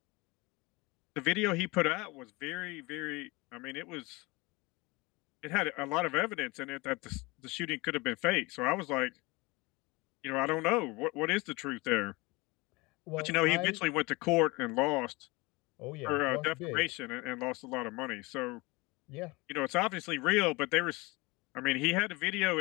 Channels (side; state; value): right; quieter; 24.4 dB